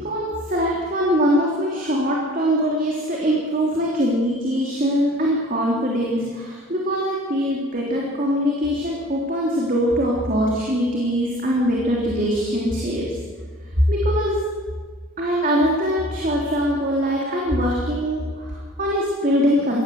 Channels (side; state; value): both; normal; correlation 0.48